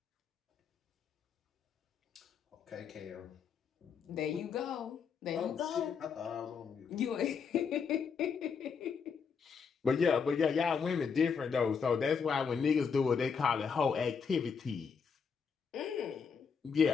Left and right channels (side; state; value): right; quieter; 6.1 dB